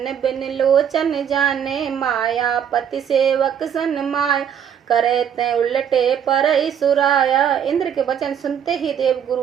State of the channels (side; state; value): left; quieter; 8.6 dB